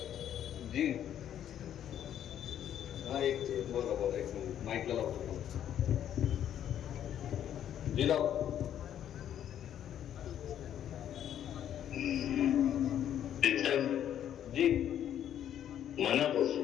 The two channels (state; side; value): quieter; right; 10.3 dB